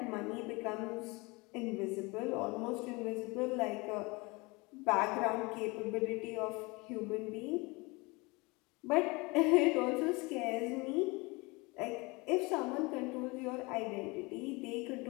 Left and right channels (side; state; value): right; quieter; 25.7 dB